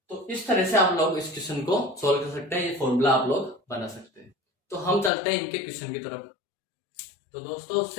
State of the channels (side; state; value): right; drops out; at 5.1 s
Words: तो इस तरह से आप लोग इस क्वेश्चन को सोल्व कर सकते हैं, ये फॉर्मूला आप लोग बना सकते हैं। तो हम चलते हैं इनके क्वेश्चन की तरफ। तो दोस्तों